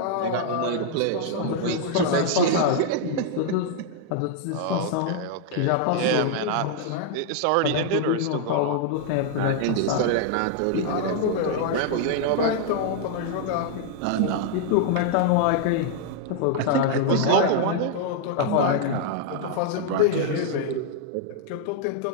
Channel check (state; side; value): different; both; correlation 0.00